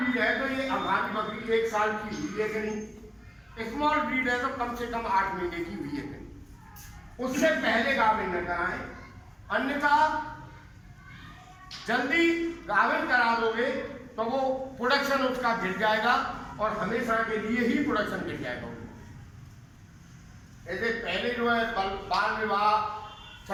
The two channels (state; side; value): identical; both; correlation 1.00